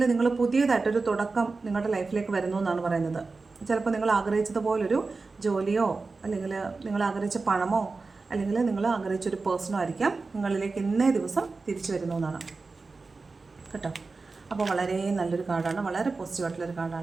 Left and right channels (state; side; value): quieter; left; 4.0 dB